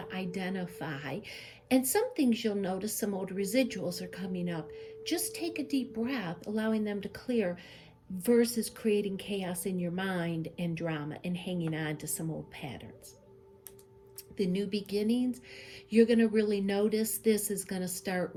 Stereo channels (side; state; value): both; identical; correlation 1.00